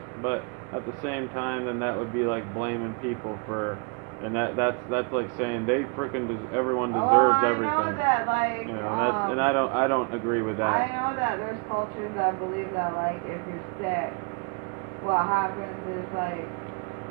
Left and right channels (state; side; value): quieter; left; 33.8 dB